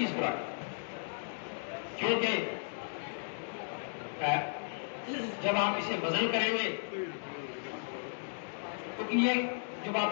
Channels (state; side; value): silent; right; digital silence